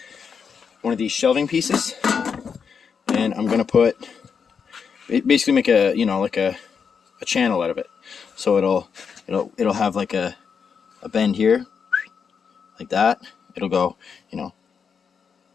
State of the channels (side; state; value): right; quieter; 6.4 dB